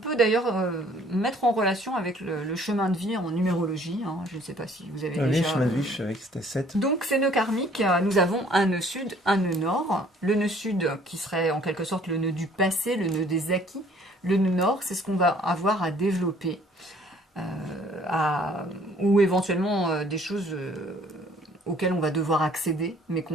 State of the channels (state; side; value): normal; both; correlation 0.57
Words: d'ailleurs mettre en relation avec le chemin de vie en numérologie. Hein, je ne sais pas si vous avez déjà... Le chemin de vie, je savais que c'était 7. Donc ces nœuds karmiques, nous avons un nœud sud, un nœud nord. Le nœud sud qui serait en quelque sorte le nœud du passé, le nœud des acquis. Le nœud nord, c'est ce qu'on va avoir à développer, ou éventuellement des choses... auxquelles on va devoir accéder, mais